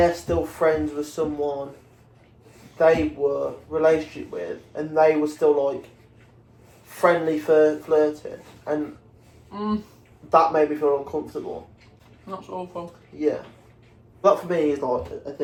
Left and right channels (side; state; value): both; identical; correlation 1.00